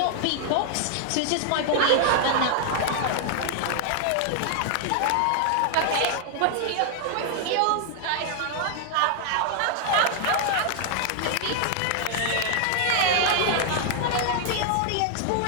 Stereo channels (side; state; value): both; different; correlation 0.00